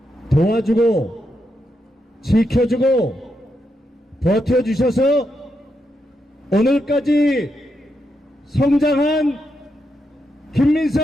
도와주고 지켜주고 버텨주셔서 오늘까지 성장한 김민석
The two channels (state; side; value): normal; both; correlation 0.83